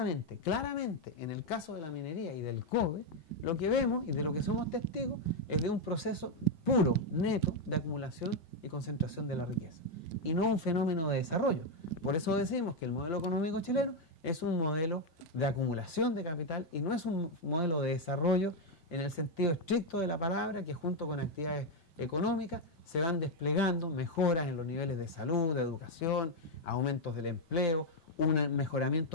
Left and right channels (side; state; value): right; late; 5.2 ms